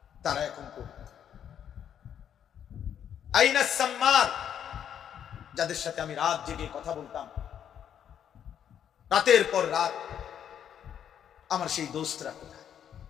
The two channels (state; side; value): quieter; right; 9.1 dB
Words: তারা এখন কই? আইনাস সাম্মার, যাদের সাথে আমি রাত জেগে কথা বলতাম, রাতের পর রাত, আমার সেই দোস্তরা কোথায়?